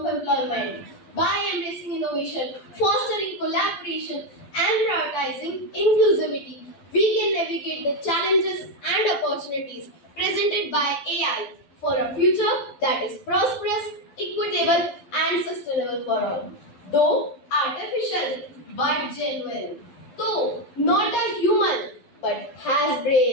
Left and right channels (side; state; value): right; late; 12 ms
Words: employment. By embracing innovation, fostering collaboration, and prioritizing inclusivity, we can navigate the challenges and opportunities presented by AI for a future that is prosperous, equitable, and sustainable for all. Though artificial but genuine. Though not a human, but has